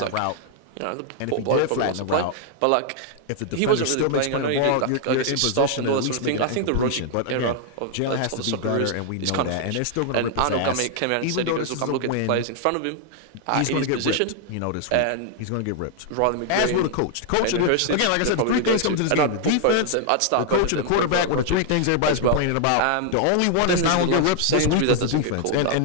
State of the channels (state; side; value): different; both; correlation 0.00